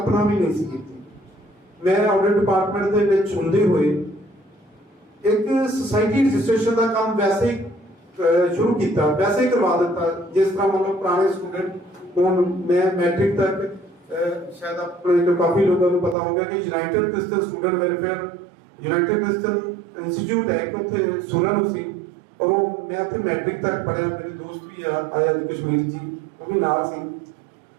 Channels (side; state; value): left; drops out; at 16.2 s